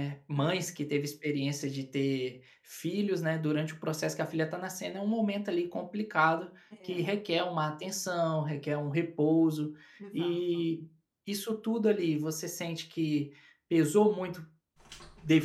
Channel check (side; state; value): both; identical; correlation 1.00